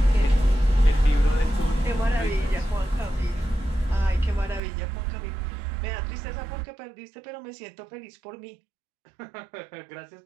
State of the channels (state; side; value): drops out; left; at 4.6 s